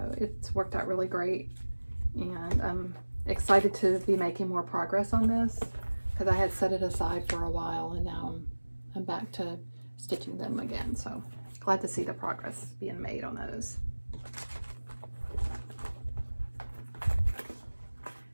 it's worked out really great. And I'm excited to be making more progress on this because I had set it aside for a while, and now I'm back to stitching them again. So glad to see the progress being made on those.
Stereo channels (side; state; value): both; inverted; correlation -1.00